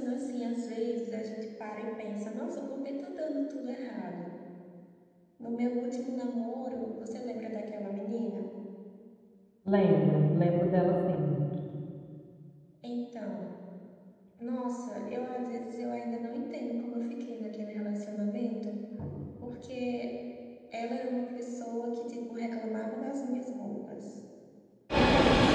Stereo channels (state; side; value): identical; both; correlation 1.00